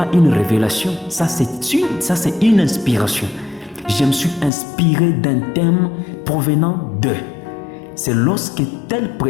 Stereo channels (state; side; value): drops out; right; at 4.5 s